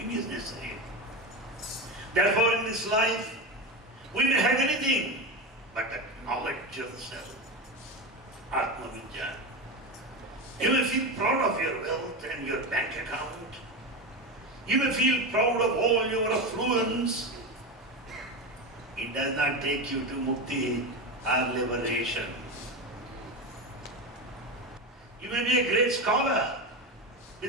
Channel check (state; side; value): normal; both; correlation 0.19